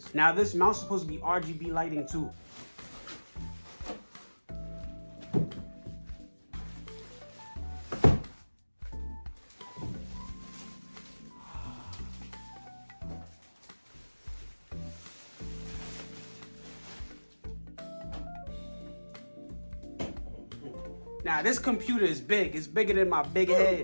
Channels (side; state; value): both; inverted; correlation -1.00